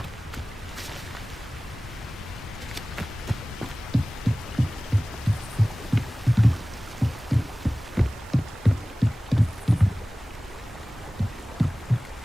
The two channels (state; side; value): normal; both; correlation 0.98